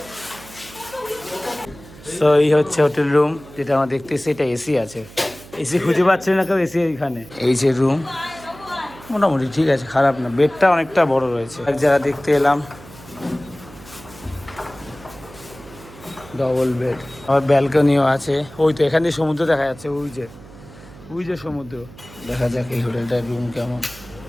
তো এই হচ্ছে হোটেল রুম, যেটা আমরা দেখতেছি। এটা এসি আছে, এসি খুঁজে পাচ্ছে না কেউ, এসি এইখানে। এই যে রুম, মোটামুটি ঠিক আছে, খারাপ না। বেডটা অনেকটা বড় রয়েছে। এক জায়গা দেখতে এলাম ডবল বেড, আবার ব্যালকনিও আছে। ওই তো এখান দিয়ে সমুদ্র দেখা যাচ্ছে, ওই যে সমুদ্র। দেখা যাক এই হোটেলটার রুম কেমন।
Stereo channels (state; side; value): noise; right; hum, 19 dB below the sound